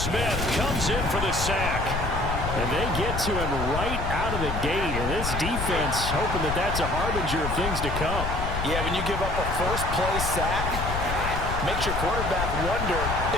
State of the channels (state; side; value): noise; left; rumble, 3 dB below the sound